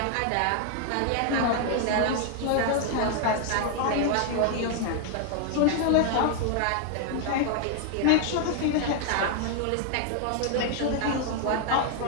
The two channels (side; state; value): both; different; correlation 0.00